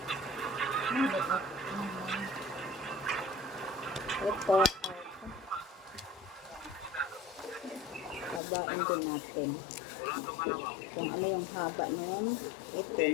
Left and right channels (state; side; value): drops out; right; at 8.4 s